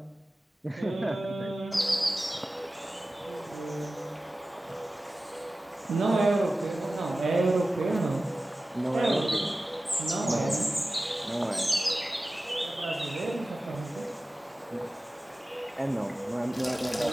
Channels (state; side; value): normal; both; correlation 0.96